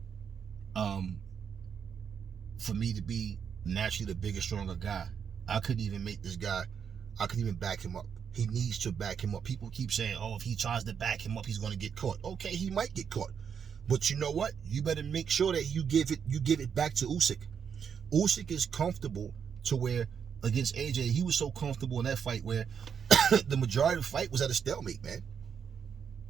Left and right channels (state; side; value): quieter; left; 7.3 dB